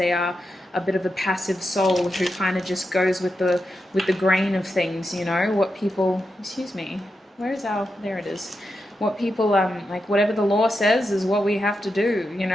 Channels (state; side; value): normal; both; correlation 0.87